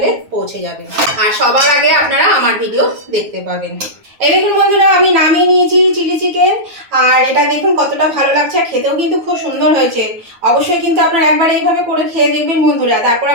পৌঁছে যাবে, আর সবার আগে আপনারা আমার ভিডিও দেখতে পাবেন। এই দেখুন বন্ধুরা আমি নামিয়ে নিয়েছি চিলি চিকেন, আর এটা দেখুন কতটা ভালো লাগছে, খেতেও কিন্তু খুব সুন্দর হয়েছে। অবশ্যই কিন্তু আপনারা একবার এইভাবে করে খেয়ে দেখবেন বন্ধুরা, তারপর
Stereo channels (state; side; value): late; left; 9.4 ms